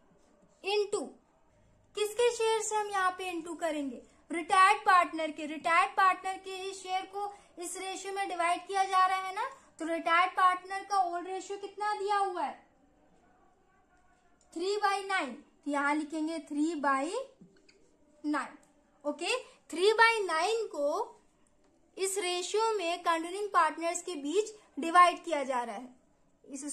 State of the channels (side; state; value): both; identical; correlation 1.00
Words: इंटू किसके शेयर से हम यहाँ पे इंटू करेंगे? रिटायर्ड पार्टनर के। रिटायर्ड पार्टनर के ही शेयर को इस रेशियो में डिवाइड किया जा रहा है ना, तो रिटायर्ड पार्टनर का ओल्ड रेशियो कितना दिया हुआ है? 3/9, तो यहां लिखेंगे 3/9। ओके, 3/9 को इस रेशियो में कंटिन्यूइंग पार्टनर्स के बीच डिवाइड किया जा रहा है। इसे